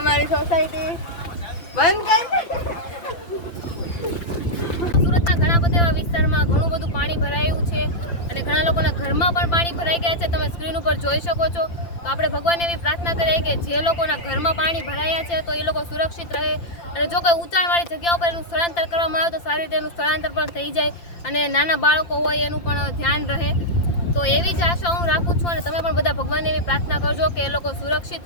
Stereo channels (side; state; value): right; late; 5.8 ms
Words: મારી સોસાયટી બંધ કરી. સુરતના ઘણા બધા એવા વિસ્તારમાં ઘણું બધું પાણી ભરાયું છે, અને ઘણા લોકોના ઘરમાં પણ પાણી ભરાઈ ગયા છે. તમે સ્ક્રીન ઉપર જોઈ શકો છો. તો આપણે ભગવાનને એવી પ્રાર્થના કરીએ કે જે લોકોના ઘરમાં પાણી ભરાયા છે તો એ લોકો સુરક્ષિત રહે, અને જો કોઈ ઊંચાણવાળી જગ્યાઓ પર એનું સ્થળાંતર કરવામાં આવે તો સારી રીતે એનું સ્થળાંતર પણ થઈ જાય, અને નાના બાળકો હોય એનું પણ ધ્યાન રહે. તો એવી જ આશા હું રાખું છું, અને તમે પણ બધા ભગવાનને એવી પ્રાર્થના કરજો કે એ લોકો સુરક્ષિત